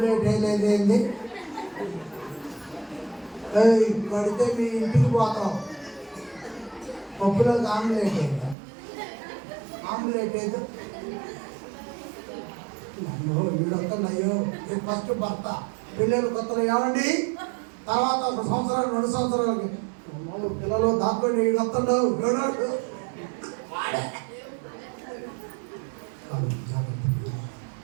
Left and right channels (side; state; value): left; drops out; at 8.6 s